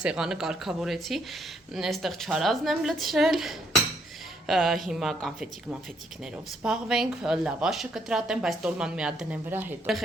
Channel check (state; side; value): normal; both; correlation 0.72